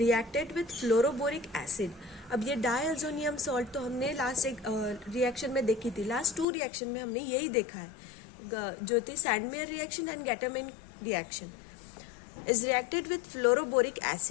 with fluoroboric acid. अब ये diazonium salt तो हमने last एक रिएक्शन में देखी थी, लास्ट 2 रिएक्शन में हमने यही देखा है, जो थी Sandmeyer reaction and Gattermann reaction. Is reacted with fluoroboric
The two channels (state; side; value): drops out; right; at 6.5 s